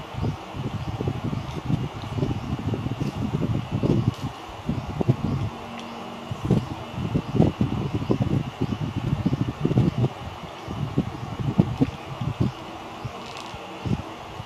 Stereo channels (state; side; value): identical; both; correlation 1.00